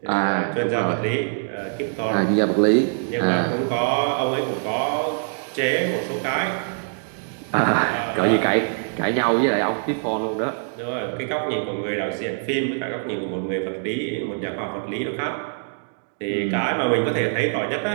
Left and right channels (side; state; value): left; silent; digital silence